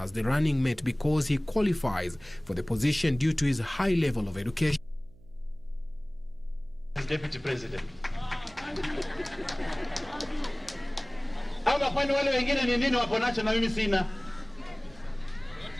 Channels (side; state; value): right; noise; hum, 25 dB below the sound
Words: the running mate because he qualifies for the position due to his high level of education. Deputy President. Ama kwani wale wengine ni nini wako nacho na mimi sina?